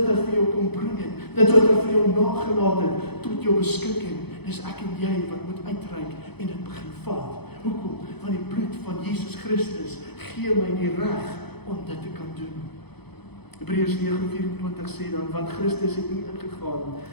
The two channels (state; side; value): late; right; 0.98 ms